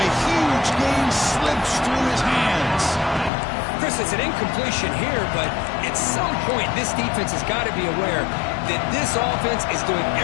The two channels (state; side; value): drops out; right; at 3.3 s